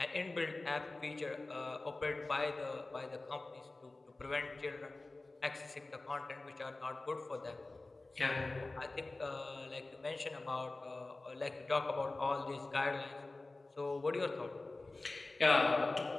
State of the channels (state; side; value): quieter; right; 3.1 dB